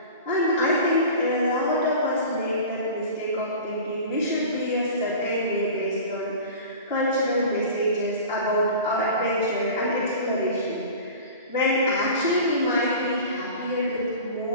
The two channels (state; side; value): inverted; both; correlation -0.37